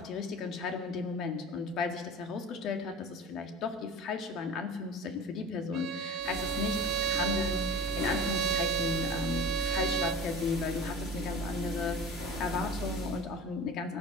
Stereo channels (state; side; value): normal; both; correlation 0.37